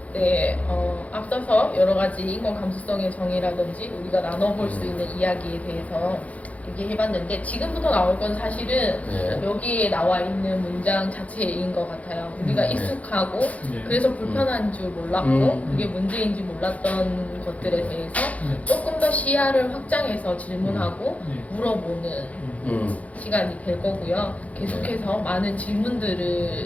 네, 앞서서 여러 가지 인권 감수성의 정의라든지 우리가 나눠볼 수 있는 이야기에 대해서 얘기해봤는데 지금부터 나올 건 사실은 여기에 나와 있는 문장 자체인 것 같아요. 우리가 익숙하고 그래서 불편한 줄 몰랐고 그게 문제인지 몰랐던 것들에 대해서 조금 더 시야를 확장해서 질문하고 물어보는 시간이 될 거고요. 계속해서 많은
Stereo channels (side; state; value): right; late; 0.068 ms